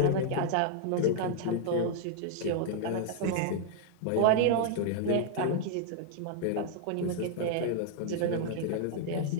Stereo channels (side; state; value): both; different; correlation -0.01